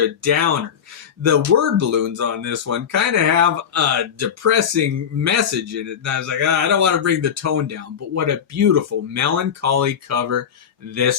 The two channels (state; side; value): quieter; right; 8.0 dB